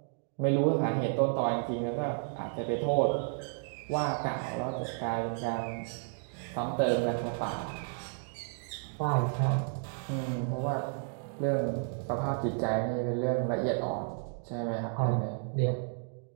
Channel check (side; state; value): left; silent; 56 dB below the other